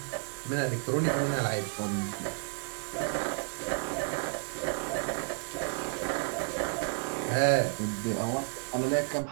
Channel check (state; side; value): silent; left; 57 dB below the other